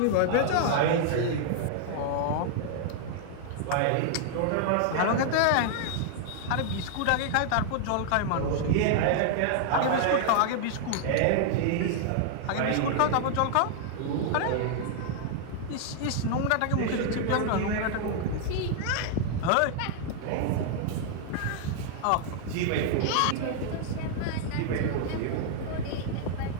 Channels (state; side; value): different; both; correlation 0.00